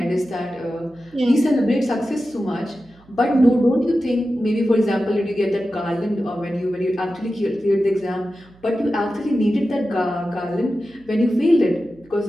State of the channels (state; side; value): noise; right; hum, 28 dB below the sound